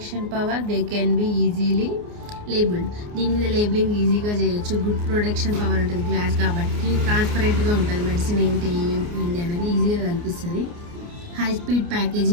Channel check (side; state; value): left; late; 29 ms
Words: power, they can be easily labeled. దీని మీద labelling ఈజీగా చేయొచ్చు. Good protection power ఉంటుంది glass కాబట్టి, ట్రాన్స్పరెంట్గా ఉంటుంది, medicine ఏంటి అనేది ఈజీగా కనిపిస్తుంది. హై స్పీడ్